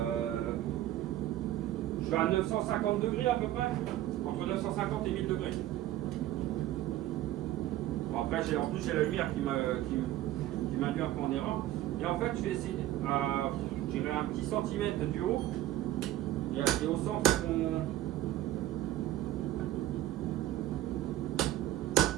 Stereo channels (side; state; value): left; quieter; 14.2 dB